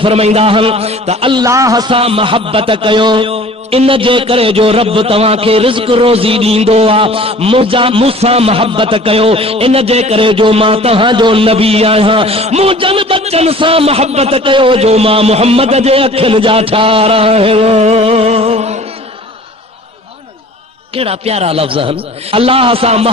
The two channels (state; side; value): normal; both; correlation 0.47